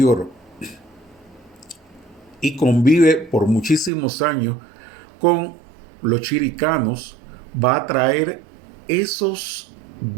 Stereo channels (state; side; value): drops out; left; at 3.9 s